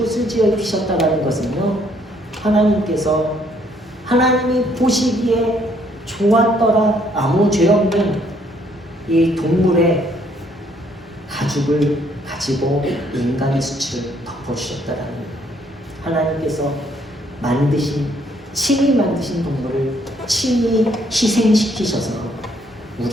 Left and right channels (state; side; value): normal; both; correlation 0.67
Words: 지어 입히셨다는 것은요, 하나님께서 하나님이 보시기에 좋았더라 아무 죄 없는 이 동물의 가죽을 가지고 인간의 수치를 덮어주셨다라는, 하나님께서 만드신 친히 만드신 동물을 친히 희생시키셔서